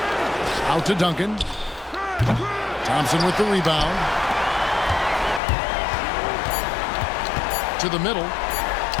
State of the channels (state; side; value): drops out; right; at 5.4 s